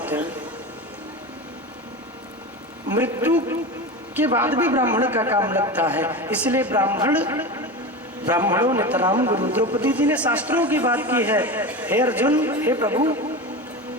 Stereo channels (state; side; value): normal; both; correlation 0.25